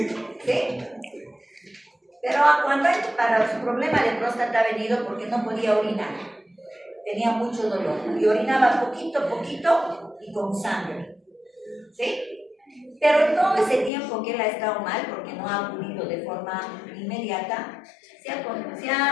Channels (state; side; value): drops out; right; at 13.9 s